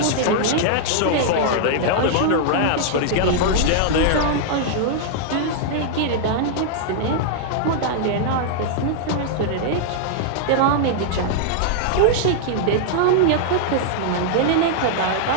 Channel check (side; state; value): both; different; correlation -0.01